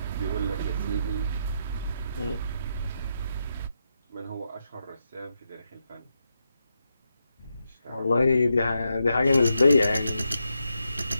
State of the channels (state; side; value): inverted; both; correlation -0.84